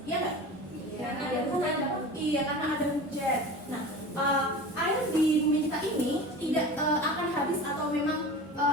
Iya nggak? Karena ada hujan. Nah, air di bumi kita ini tidak akan habis atau memang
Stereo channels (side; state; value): both; normal; correlation 0.34